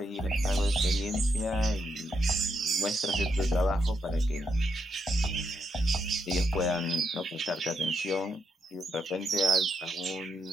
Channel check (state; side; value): normal; both; correlation 0.79